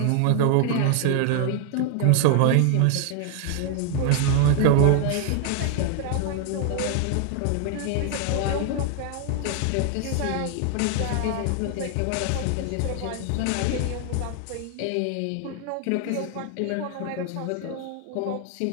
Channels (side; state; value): both; different; correlation 0.00